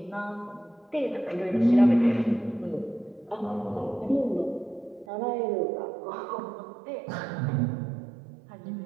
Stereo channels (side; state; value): left; drops out; at 5.1 s